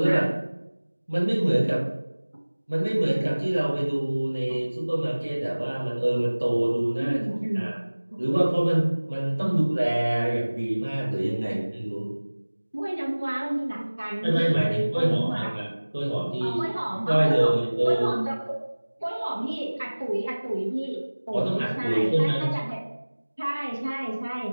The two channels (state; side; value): inverted; both; correlation -1.00